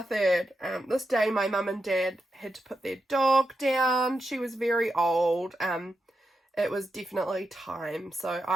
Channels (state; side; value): normal; both; correlation 0.87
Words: This day my mum and dad had to put their dog down. She was very old. It was definitely time, so